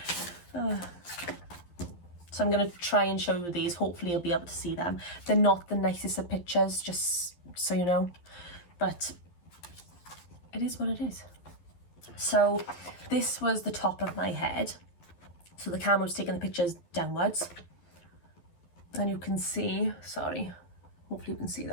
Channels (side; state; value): right; late; 11 ms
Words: So I'm going to try and show you these. Hopefully you'll be able to see them. They're not the nicest of pictures, just so you know. But it is what it is. So this was the top of my head. So the camera was taking the pictures downwards. And you can see, sorry, hopefully you can see